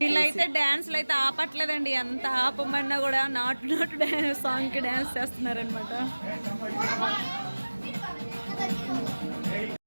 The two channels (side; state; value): both; inverted; correlation -1.00